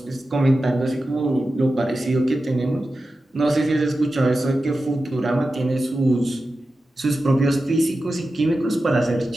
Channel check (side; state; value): both; normal; correlation 0.92